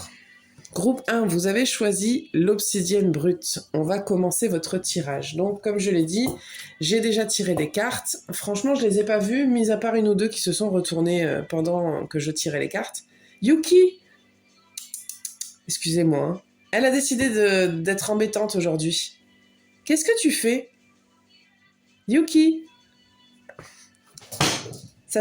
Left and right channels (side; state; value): both; identical; correlation 1.00